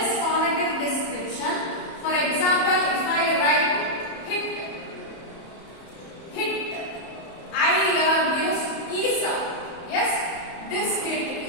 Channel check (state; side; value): late; right; 31 ms